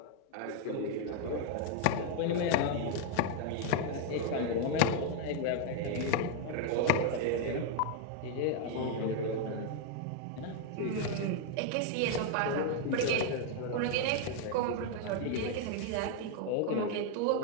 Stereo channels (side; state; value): both; different; correlation 0.01